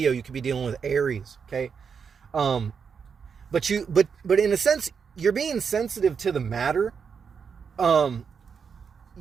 You could be dealing with Aries. Okay, but in a sense, you're being sensitive to the matter.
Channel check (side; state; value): left; quieter; 6.3 dB